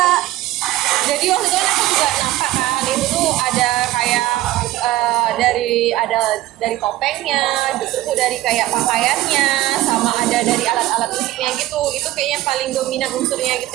jadi waktu itu kan aku juga nampak kan itu tuh ada kayak dari topengnya, terus tuh dari kayak pakaiannya, sama ada dari alat-alat musiknya gitu. Itu kayaknya paling dominan unsurnya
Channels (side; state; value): left; quieter; 16.2 dB